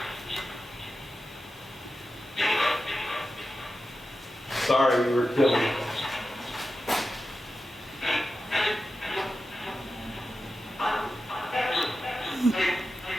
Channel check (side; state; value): both; normal; correlation 0.92